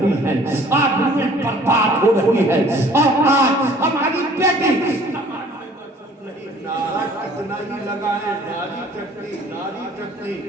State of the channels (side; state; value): both; normal; correlation 0.53